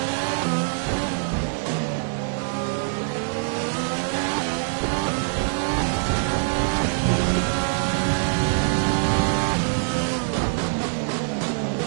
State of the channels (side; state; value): left; silent; 63 dB below the other